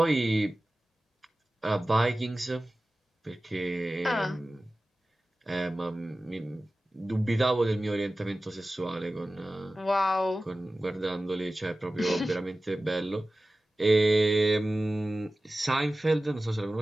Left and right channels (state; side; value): normal; both; correlation 0.96